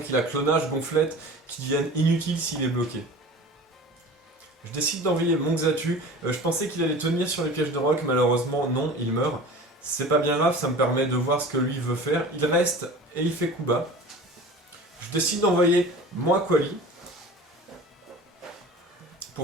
a clonage, gonflette, qui deviennent inutiles s'il est bloqué. Je décide d'envoyer mon Xatu, je pensais qu'il allait tenir sur les pièges de roc, malheureusement non, il meurt. C'est pas bien grave, ça me permet de voir ce que lui veut faire. Il reste et il fait coup bas. Je décide d'envoyer mon Aquali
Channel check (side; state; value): both; normal; correlation 0.38